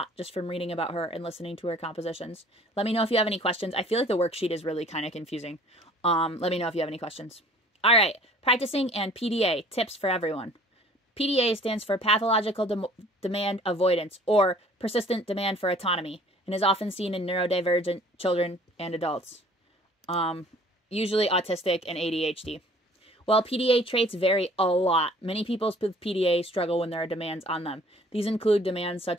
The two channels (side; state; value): both; normal; correlation 0.53